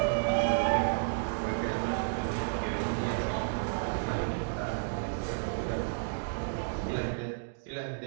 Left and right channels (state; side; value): silent; left; digital silence